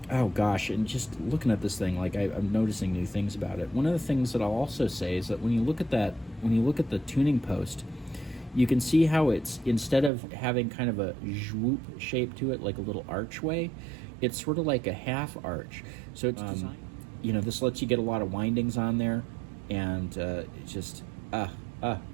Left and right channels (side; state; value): left; drops out; at 10.1 s